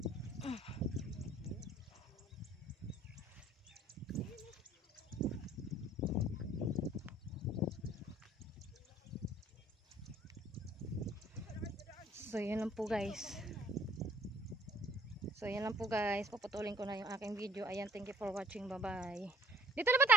So yan lang po guys. So yan lang po guys. Paputulin ko na yung aking video. Ayan, thank you for watching. Bye bye. Dito na ba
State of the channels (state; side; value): normal; both; correlation 0.56